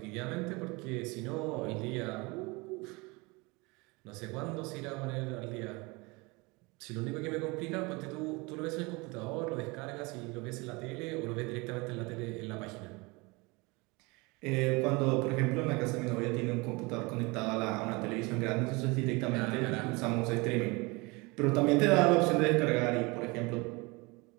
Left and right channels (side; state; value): left; quieter; 26.0 dB